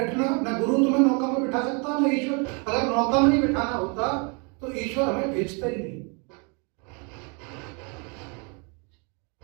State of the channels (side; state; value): left; quieter; 34.3 dB